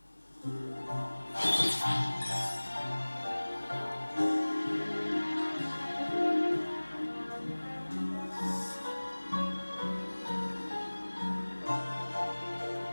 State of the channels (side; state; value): both; inverted; correlation -1.00